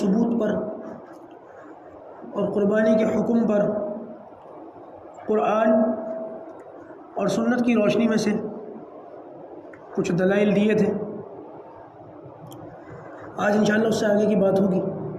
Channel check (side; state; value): both; identical; correlation 1.00